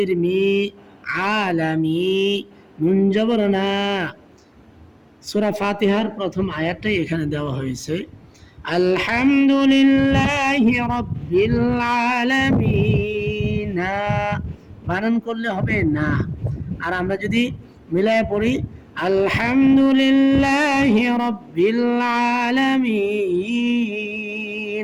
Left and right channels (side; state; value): both; identical; correlation 1.00